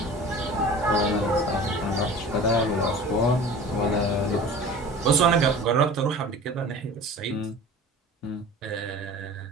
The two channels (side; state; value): both; normal; correlation 0.40